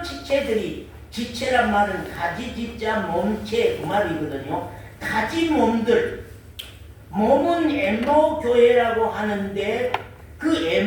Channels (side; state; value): both; identical; correlation 1.00